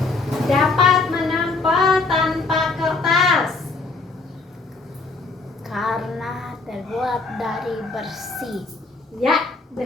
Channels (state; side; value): quieter; right; 3.8 dB